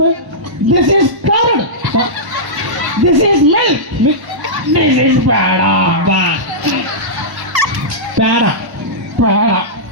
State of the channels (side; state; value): left; late; 1.1 ms